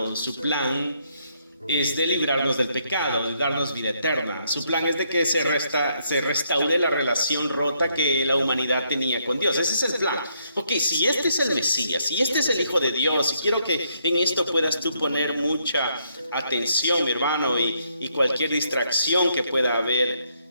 Su plan es de librarnos del pecado, de darnos vida eterna. Su plan es de que se restaure la relación rota que la humanidad tenía con Dios. Ese es el plan. Ok, si este es el Mesías, si este es el Hijo de Dios, y quiero que en esto puedas tú poner mucha atención, mi hermano, y cualquier distracción que pueda haber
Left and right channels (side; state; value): both; inverted; correlation -0.73